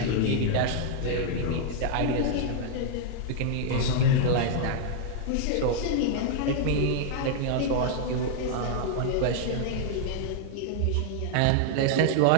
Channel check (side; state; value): both; different; correlation 0.00